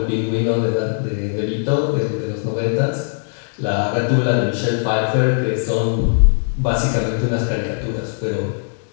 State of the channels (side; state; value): right; silent; digital silence